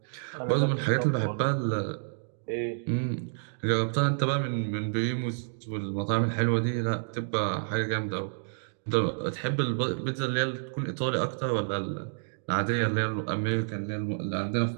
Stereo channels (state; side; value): silent; left; digital silence